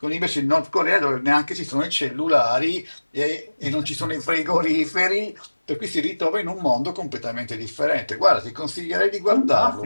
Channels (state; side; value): inverted; both; correlation -1.00